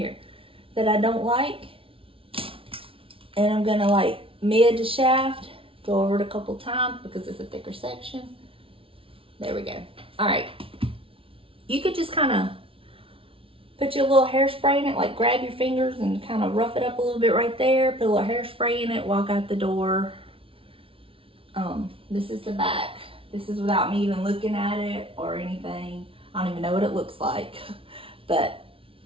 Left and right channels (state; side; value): late; left; 0.26 ms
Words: that I don't like, and I'm gonna like mid to shaft, go over it a couple times because it's a thicker section. There we go. All right, you could just kind of put your little hairspray in it, like grab your fingers and kind of rough it up a little bit right there, put a little hairspray in it, walk out the door. This is the back. This is without me even looking at it or anything. I don't even know what it looks like, but